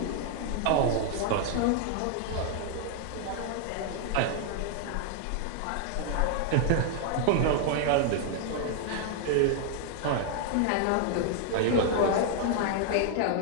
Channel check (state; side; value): different; both; correlation 0.00